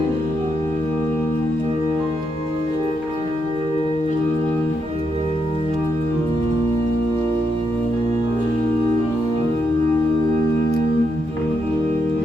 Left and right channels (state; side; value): normal; both; correlation 0.81